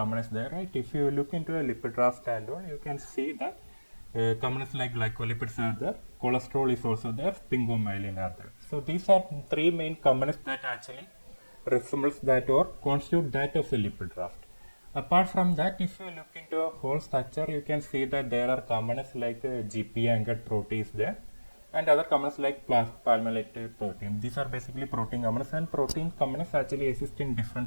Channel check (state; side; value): inverted; both; correlation -1.00